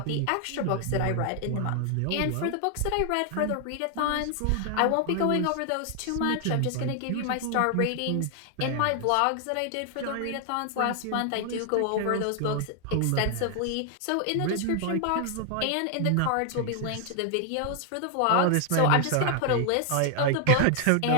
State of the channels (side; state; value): both; different; correlation 0.00